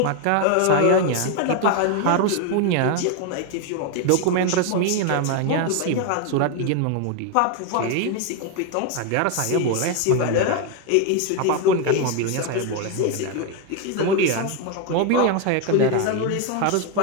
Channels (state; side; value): different; both; correlation 0.01